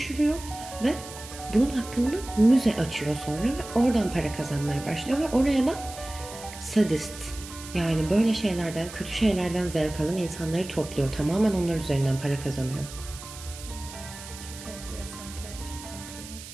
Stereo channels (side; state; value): right; noise; hiss, 14 dB below the sound